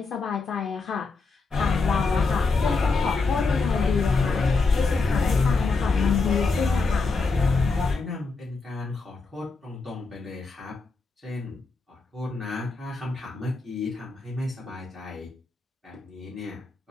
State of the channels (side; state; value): right; quieter; 4.0 dB